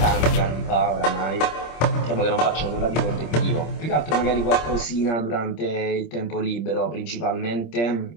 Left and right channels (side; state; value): right; late; 26 ms